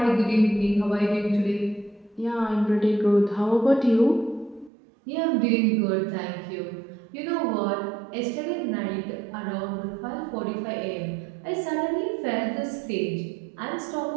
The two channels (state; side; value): drops out; left; at 4.7 s